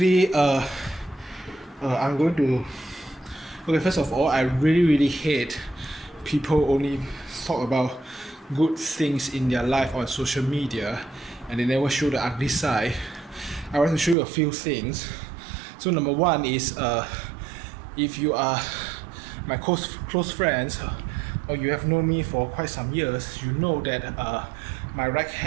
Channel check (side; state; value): left; drops out; at 14.2 s